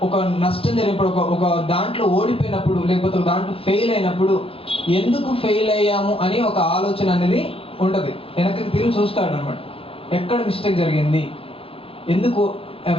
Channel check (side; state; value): right; late; 0.27 ms